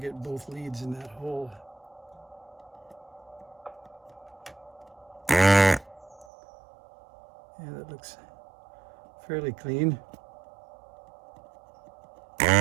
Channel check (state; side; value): drops out; left; at 6.2 s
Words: both leads in that hole. Yeah, that looks fairly clean.